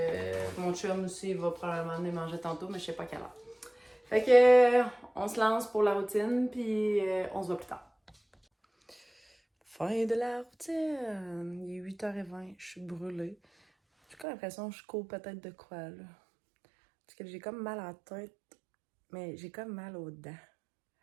mon chum aussi, il va probablement venir manger tantôt, mais je sais pas quelle heure. Fait que, on se lance pour la routine, puis on se voit plus tard. Fin de la routine. Il est 8h20, je suis brûlée. J'ai comme l'impression que je cours peut-être de quoi, là. Parce que j'ai comme mal à la tête, mais j'ai comme mal aux dents.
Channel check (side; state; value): left; drops out; at 14.2 s